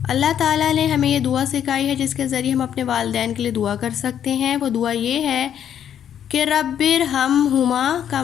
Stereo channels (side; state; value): right; quieter; 9.5 dB